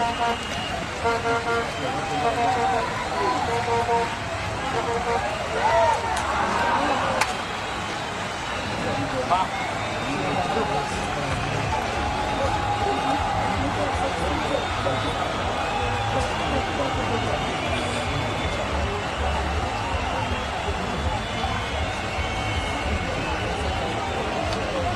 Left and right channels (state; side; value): identical; both; correlation 1.00